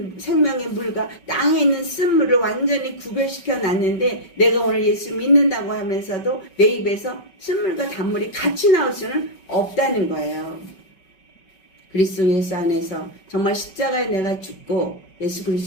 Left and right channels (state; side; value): late; right; 5.3 ms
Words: 생명의 물과 땅에 있는 쓴물을 완전히 구별시켜 놨는데 내가 오늘 예수 믿는다고 하면서도 내 입에서 쓴물과 단물이 같이 나올 수는 없다는 거예요. 그리스도 예수 안에서 정말 십자가에 내가 죽고 예수